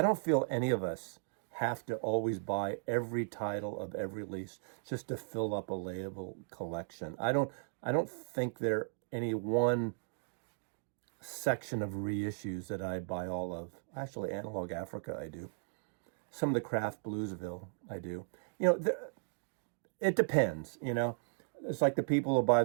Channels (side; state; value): left; silent; digital silence